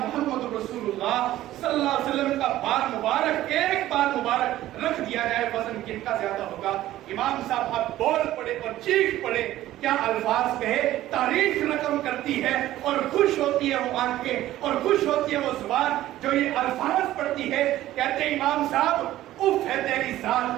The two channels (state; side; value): quieter; left; 14.5 dB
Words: رسول اللہ صلی اللہ علیہ وسلم کا بال مبارک, ایک بال مبارک رکھ دیا جائے, وزن کتنا زیادہ ہوگا؟ امام صاحب اب بول پڑے اور چیخ پڑے, کیا الفاظ کہے, تاریخ رقم کرتی ہے اور خوش ہوتی ہے وہ آنکھیں اور خوش ہوتی ہے وہ زبان جو یہ الفاظ پڑھتی ہے. کہتے ہیں امام صاحب اف ہے تیری